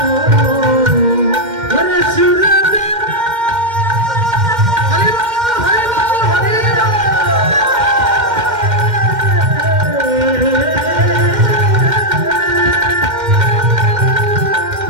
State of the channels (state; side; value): late; left; 2.1 ms